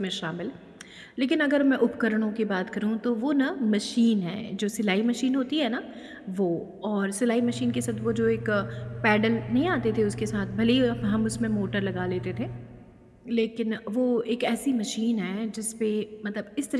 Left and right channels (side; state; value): both; identical; correlation 1.00